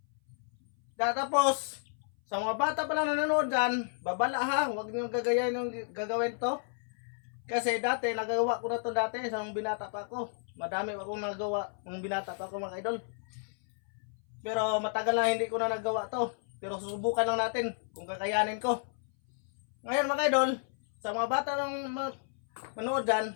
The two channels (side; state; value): right; silent; 56 dB below the other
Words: Tapos, sa mga bata pala nanonood dyan, babala ha, huwag niyong gagayain yung gagawin to. Kasi dati, nagagawa ko na to dati, sa mga binata pa ako. Madami akong nagawa ng binata pa ako mga kaidol. Pero matagal na hindi ko na nagawa to. Pero susubukan lang natin kung kakayanin ko. Ngayon mga kaidol, sa mga bata ng manood dyan,